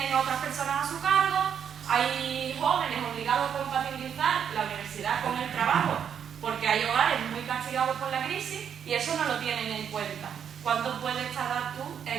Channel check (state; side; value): quieter; left; 8.2 dB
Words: a otras personas a su cargo, hay jóvenes obligados a compatibilizar la universidad con el trabajo, porque hay hogares muy castigados por la crisis y eso no lo tienen en cuenta. ¿Cuánto puedes tardar tú